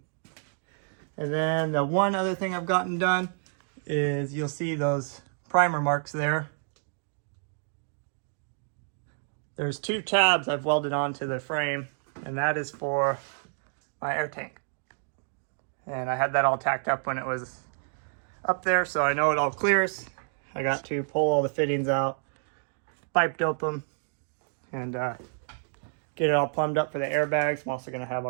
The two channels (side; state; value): left; silent; 59 dB below the other